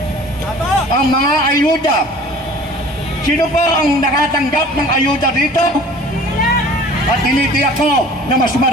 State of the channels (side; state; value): both; normal; correlation 0.46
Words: Ang mga ayuda. Sino pa ang nakatanggap ng ayuda dito? At tinitiyak ko na mas